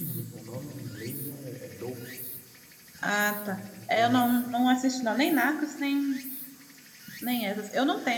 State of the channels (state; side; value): identical; both; correlation 1.00